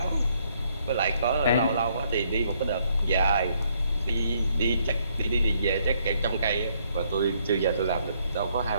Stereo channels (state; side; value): inverted; both; correlation -0.70